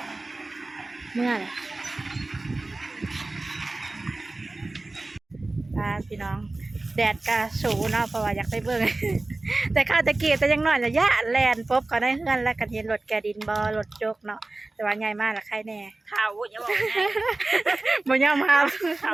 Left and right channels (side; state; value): left; quieter; 3.1 dB